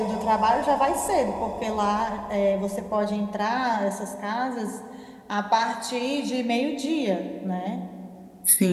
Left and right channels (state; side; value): identical; both; correlation 1.00